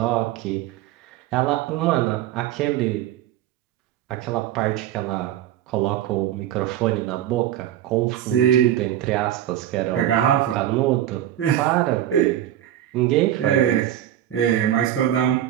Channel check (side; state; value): left; quieter; 12.1 dB